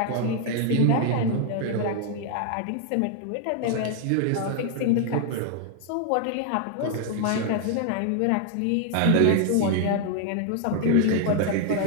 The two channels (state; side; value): different; both; correlation 0.00